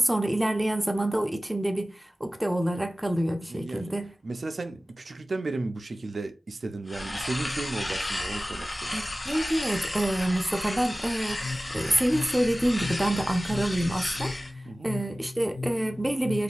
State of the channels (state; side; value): normal; both; correlation 0.97